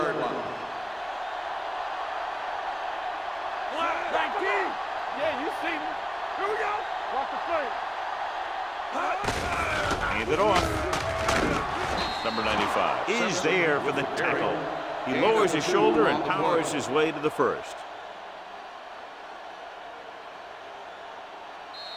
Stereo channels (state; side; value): identical; both; correlation 1.00